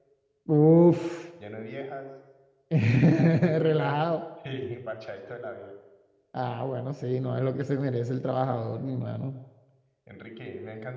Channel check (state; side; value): identical; both; correlation 1.00